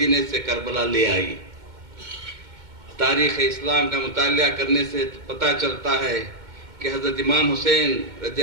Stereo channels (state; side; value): late; left; 2.1 ms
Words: سے کربلا لے آئی۔ تاریخ اسلام کا مطالعہ کرنے سے پتہ چلتا ہے کہ حضرت امام حسین رضی